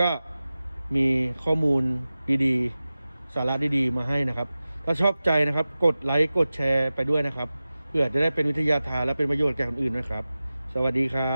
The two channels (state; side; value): inverted; both; correlation -0.96